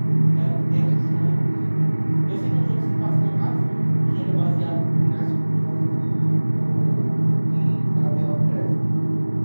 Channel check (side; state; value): both; inverted; correlation -1.00